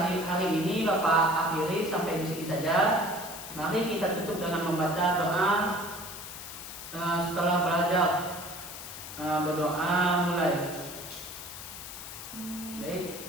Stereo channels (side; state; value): left; noise; hiss, 11 dB below the sound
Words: hari ini Bapak akhiri sampai di sini saja. Mari kita tutup dengan membaca doa setelah belajar. berdoa mulai. Baik.